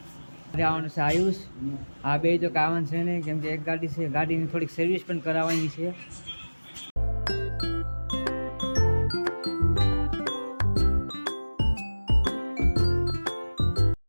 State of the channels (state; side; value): inverted; both; correlation -1.00